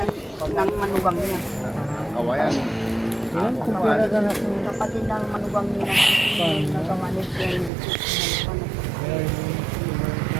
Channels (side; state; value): left; drops out; at 7.7 s